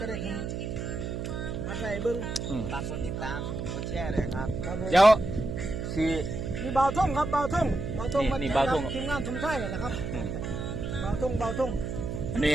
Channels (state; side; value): noise; right; hum, 4 dB below the sound